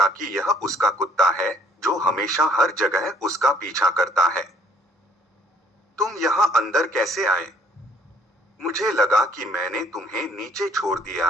कि यह उसका कुत्ता है, जो हमेशा हर जगह उसका पीछा करता है। तुम यहाँ अंदर कैसे आए? मुझे लगा कि मैंने तुम्हें नीचे छोड़ दिया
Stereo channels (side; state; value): both; normal; correlation 0.61